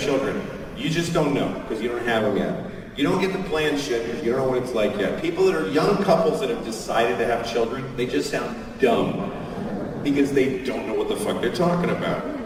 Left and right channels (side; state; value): both; identical; correlation 1.00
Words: You just don't know, because you don't have them yet. You don't get to plan shit, because you don't know what it's like yet. People that are young couples that have decided to have children, they just sound dumb, because they don't know what the fuck they're talking about.